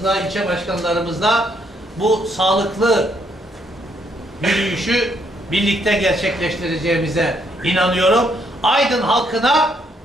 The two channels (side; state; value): both; normal; correlation 0.72